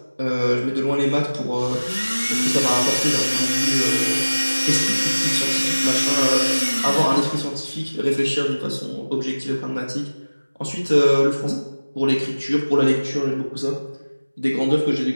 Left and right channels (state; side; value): inverted; both; correlation -1.00